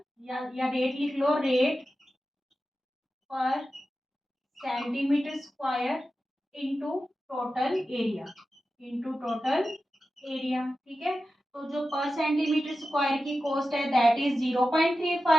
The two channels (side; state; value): both; normal; correlation 0.92